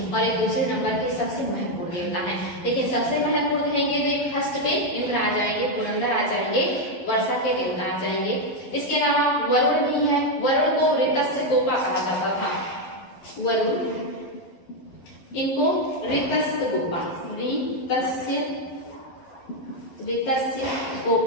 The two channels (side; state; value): right; late; 11 ms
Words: और एक दूसरे नंबर के सबसे महत्वपूर्ण देवता है। देखिए सबसे महत्वपूर्ण कहेंगे तो एक फर्स्ट पे इंद्र आ जाएंगे, पुरंदर आ जाएंगे, वर्षा के देवता आ जाएंगे। इसके अलावा वरुण भी है। वरुण को ऋतस्य गोपा कहा जाता था। वरुण, इनको ऋतस्य गोपा, ऋतस्य